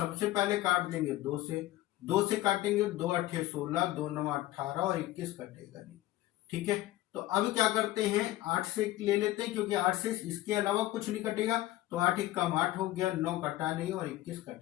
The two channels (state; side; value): quieter; right; 16.1 dB